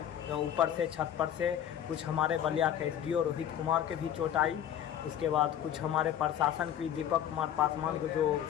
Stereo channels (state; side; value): quieter; right; 10.1 dB